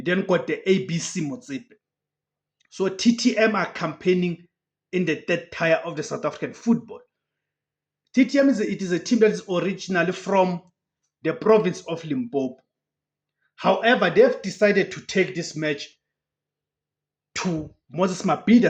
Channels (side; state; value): both; identical; correlation 1.00